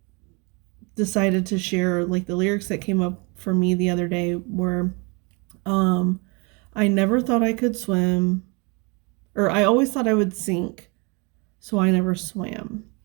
decided to share like the lyrics that came up for me the other day were I never thought I could swim, or I always thought I would sink, so I never swam.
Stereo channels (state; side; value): quieter; left; 30.6 dB